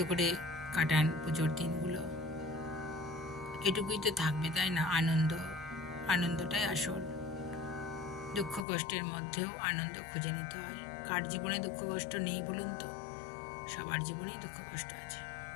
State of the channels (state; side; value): drops out; right; at 8.6 s